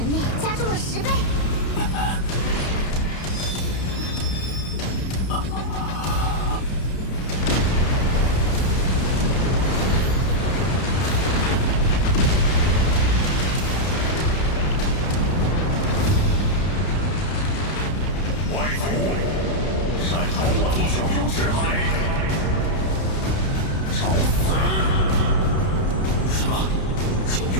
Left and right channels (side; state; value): right; late; 31 ms